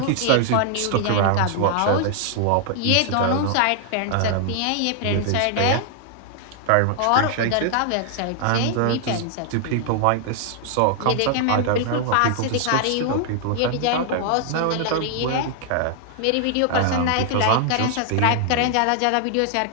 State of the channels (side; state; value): both; different; correlation 0.00